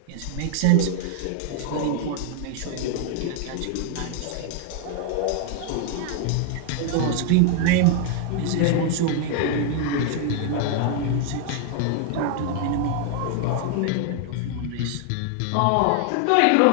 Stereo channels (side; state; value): both; different; correlation 0.00